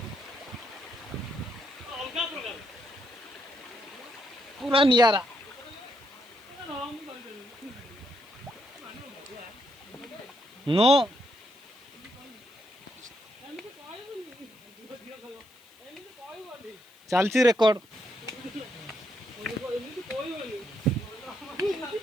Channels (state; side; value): noise; left; hiss, 27 dB below the sound